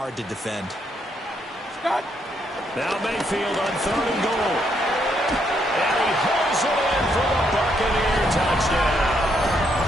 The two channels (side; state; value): both; normal; correlation 0.75